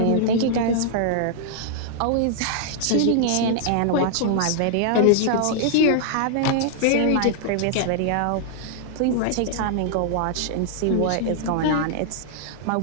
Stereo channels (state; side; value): different; both; correlation -0.01